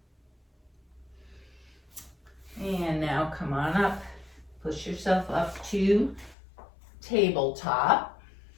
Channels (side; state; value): right; drops out; at 6.4 s